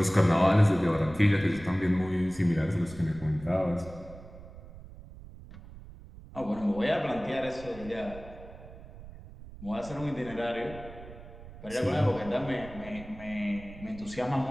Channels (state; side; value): noise; right; rumble, 16 dB below the sound